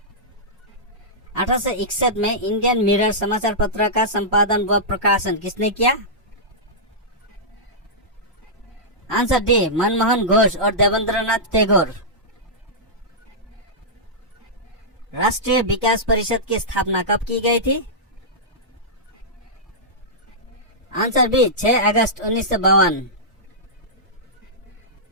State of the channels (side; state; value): both; normal; correlation -0.13